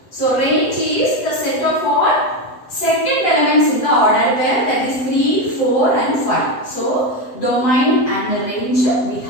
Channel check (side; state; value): right; late; 7.8 ms